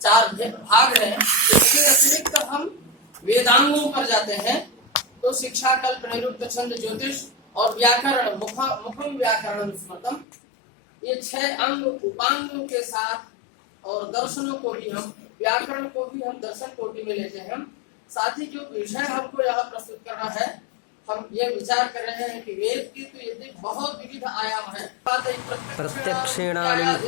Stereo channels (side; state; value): right; drops out; at 10.2 s